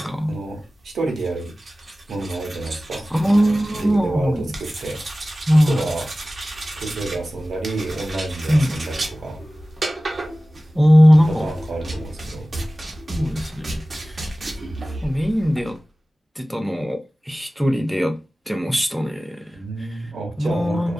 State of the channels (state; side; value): normal; both; correlation 0.97